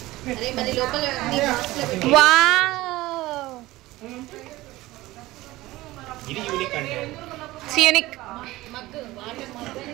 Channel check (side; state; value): left; quieter; 18.3 dB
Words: అరే మరి లోపల నీ బాక్స్ లో పెట్టు. వావ్ ఇది యూనిక్ అంటే యూనిక్ మగ్గు వాటర్ మగ్గు